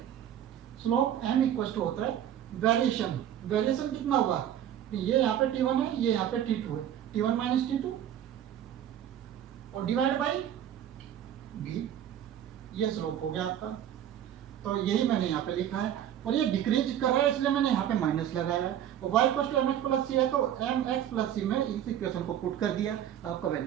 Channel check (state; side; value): quieter; left; 10.5 dB